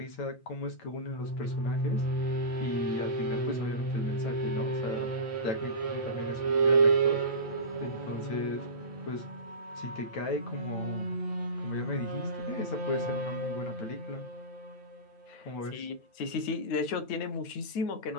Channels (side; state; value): right; late; 8.9 ms